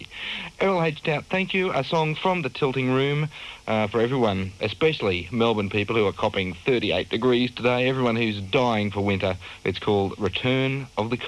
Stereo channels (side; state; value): both; identical; correlation 1.00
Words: Errol H. Tout, thank you. A song from The Tilting Room for everyone, especially Melbourne people who are copping 38 degrees today, everyone who's dying for winter. It's called Return of the